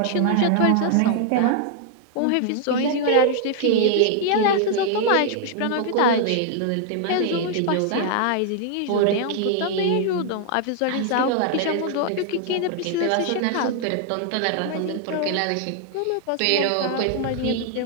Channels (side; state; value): both; different; correlation 0.00